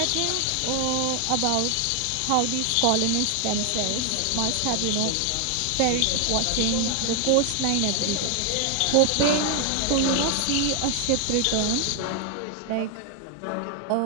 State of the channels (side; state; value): both; different; correlation 0.00